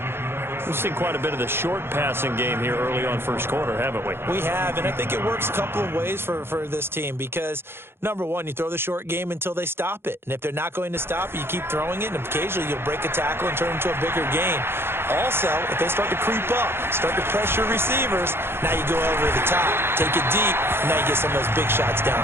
We've seen quite a bit of the short passing game here early on first quarter, haven't we? We have, and I think it works a couple of ways for this team because, number one, you throw the short game until they stop it. And if they're not going to stop it, you keep throwing it, and occasionally you'll break a tackle and turn it into a bigger gain. Also, if they start to creep up, start to pressure receivers, now you go over the top, take it deep, and now you get some of those big shots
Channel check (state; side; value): late; left; 0.11 ms